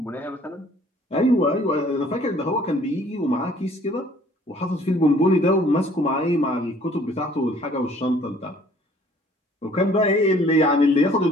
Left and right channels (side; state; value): both; normal; correlation 0.56